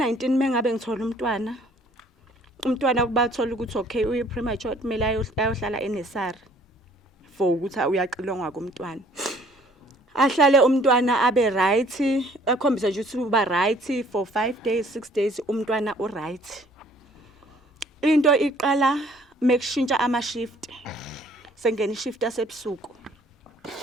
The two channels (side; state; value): both; normal; correlation 0.58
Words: mengabe ngithola umntwana kubathola ukuthi okay uyi premature kumele ayohlala eNesari for ukuthi uyaqilongwa komntwana. Ahlale umntwana abe right, akhombisa nje ukuthi uba right for 5 days 6 days umntwana u right. Into iqala mekushintsha ama shift. Sengena ishift yasebusuku.